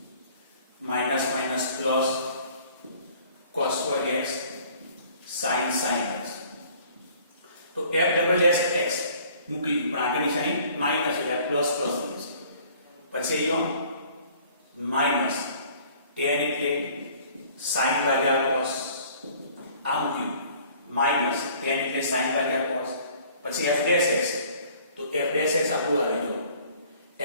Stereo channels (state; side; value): inverted; both; correlation -0.54